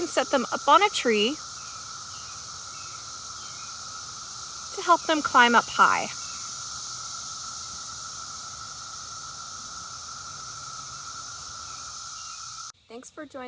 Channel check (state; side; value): identical; both; correlation 1.00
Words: set them up on a tree to help them climb up high. Thanks for